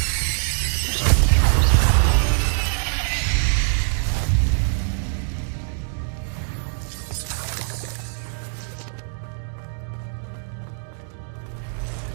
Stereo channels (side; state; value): left; silent; digital silence